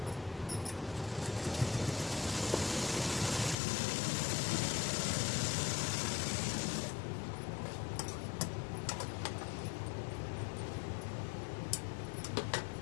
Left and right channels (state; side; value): drops out; right; at 3.6 s